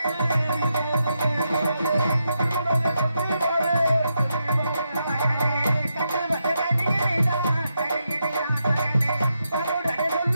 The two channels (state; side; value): inverted; both; correlation -0.84